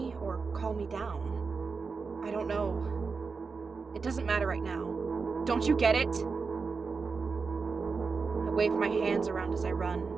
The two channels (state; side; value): quieter; left; 4.8 dB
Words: or calm me down? I don't know. It doesn't matter right now. Don't you get it? I wave my hands around as I run,